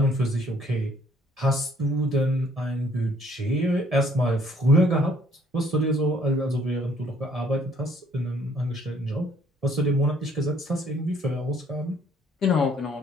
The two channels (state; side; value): normal; both; correlation 0.62